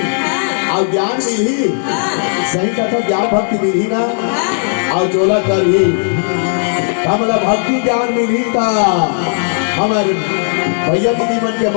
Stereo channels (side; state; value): right; silent; 69 dB below the other